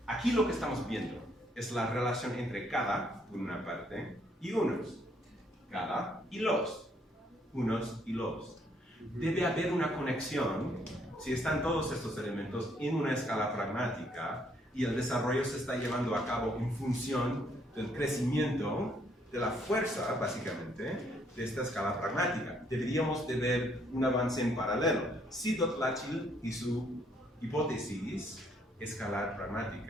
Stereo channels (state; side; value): normal; both; correlation 0.68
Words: Aquí lo que estamos viendo es la relación entre cada, por una parte, y unos. Cada y los. Unos y los. Debe haber una conexión si están todos estos elementos en una escala pragmática y el desarrollo se está llevando a cabo en función del crecimiento de la fuerza, básicamente, de esta escala pragmática. Deberíamos de ver un avance en paralelo. Si Dotlatchil y su hipótesis escalar